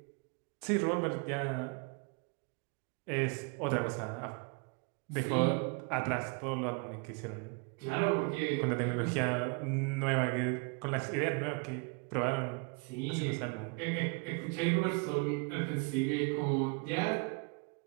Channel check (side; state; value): left; quieter; 33.4 dB